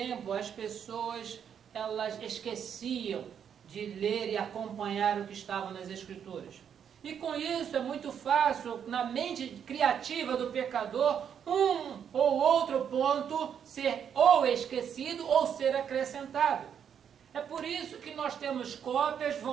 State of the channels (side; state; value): left; quieter; 8.2 dB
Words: as pessoas elas esqueciam de ler e acompanhar o que estava nas Escrituras. E com isso é muito fácil, na mente criativa do pecador, um ou outro ponto ser ou esquecido ou ser acrescentado. É por isso que nós temos cópias